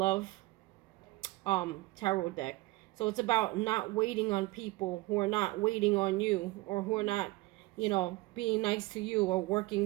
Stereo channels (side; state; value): left; quieter; 20.7 dB